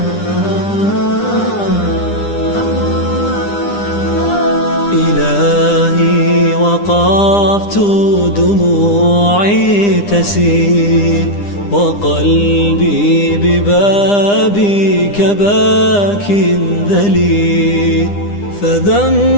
وقفت دموعي تسيل وقلبي ببابك باك ذليل،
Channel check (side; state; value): right; late; 9.9 ms